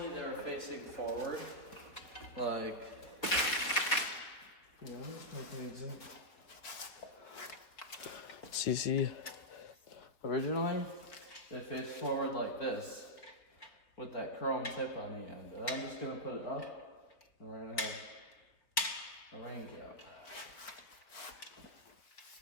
they were facing forward. Like, yeah, let's make an example. See, originally, they faced forward like this, with that chrome tip on the end. And I'm just gonna put it up, and we're gonna have a rain cap.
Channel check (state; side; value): late; right; 4.1 ms